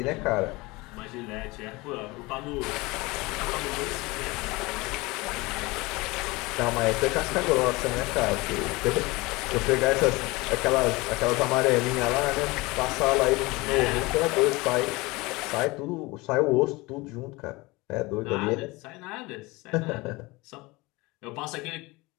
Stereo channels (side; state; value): right; quieter; 23.0 dB